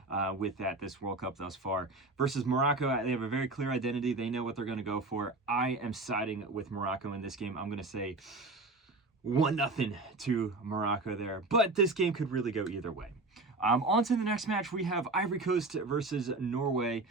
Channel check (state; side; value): quieter; left; 3.2 dB